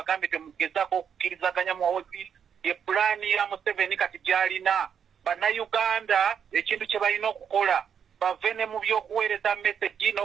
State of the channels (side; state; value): left; quieter; 7.8 dB